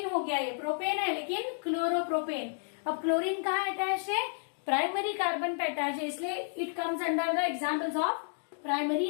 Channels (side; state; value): right; silent; digital silence